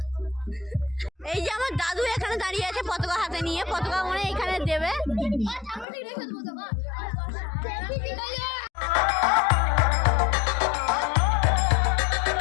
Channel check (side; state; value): right; drops out; at 5.9 s